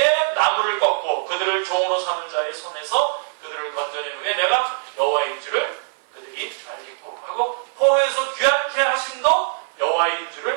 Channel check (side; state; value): left; silent; 56 dB below the other